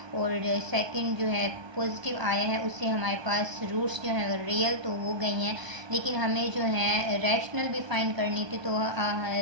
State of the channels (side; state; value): left; late; 1.2 ms